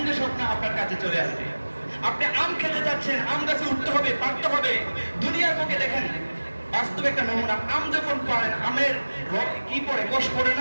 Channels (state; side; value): inverted; both; correlation -1.00